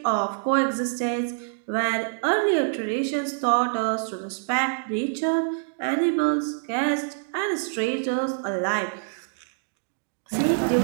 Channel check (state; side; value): silent; left; digital silence